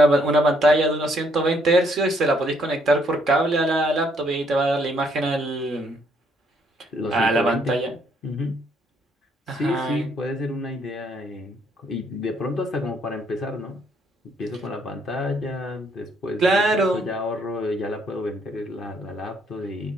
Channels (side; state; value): both; normal; correlation 0.69